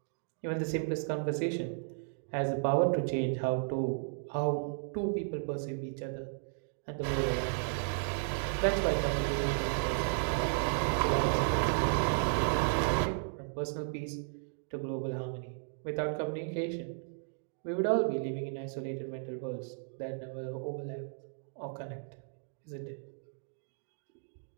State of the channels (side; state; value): left; silent; digital silence